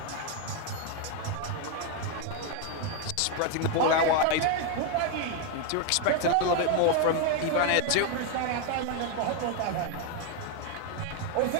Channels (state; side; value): different; both; correlation 0.01